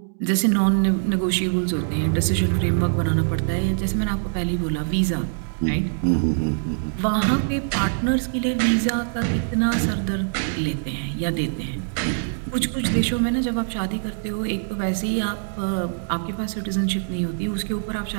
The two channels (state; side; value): silent; left; digital silence